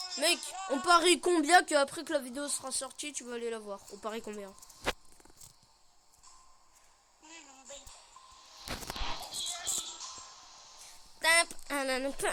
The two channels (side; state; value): both; identical; correlation 1.00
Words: on parie combien que après que la vidéo sera sortie, tu vas aller la voir? On parie combien?